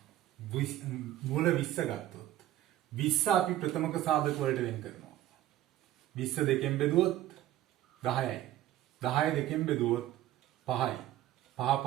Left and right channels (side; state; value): left; quieter; 13.8 dB